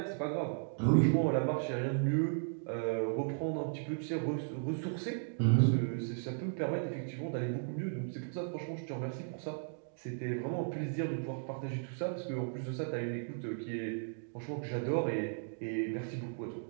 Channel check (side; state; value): left; silent; digital silence